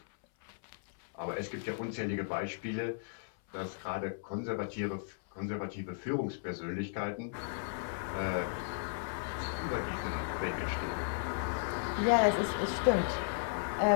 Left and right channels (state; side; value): silent; right; 54 dB below the other